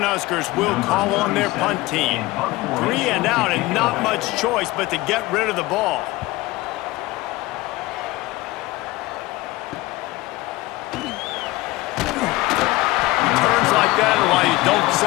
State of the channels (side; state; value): right; quieter; 19.8 dB